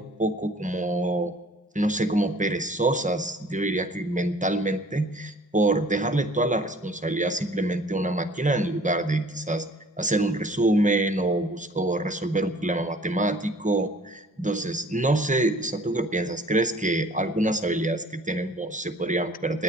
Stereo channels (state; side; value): normal; both; correlation 0.52